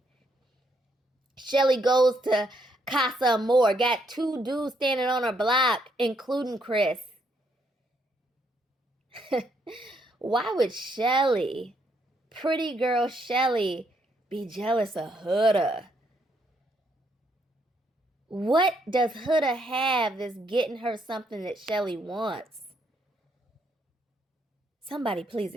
Chelley goes to Casa Amor, got 2 dudes standing on her block, including Chris. Why would Chelley, pretty girl Chelley, be jealous of Huda? What does Huda have that's getting her something that Chelley wants? Somebody please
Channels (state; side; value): normal; both; correlation 0.74